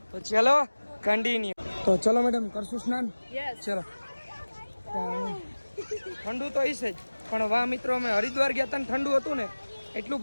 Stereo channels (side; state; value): both; inverted; correlation -1.00